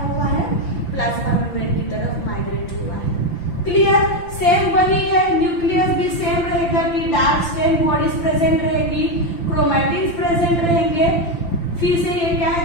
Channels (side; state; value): right; late; 5.8 ms